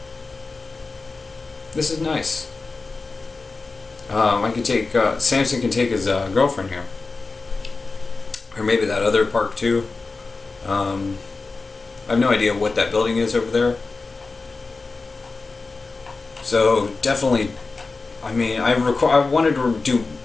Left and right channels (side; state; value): right; quieter; 3.9 dB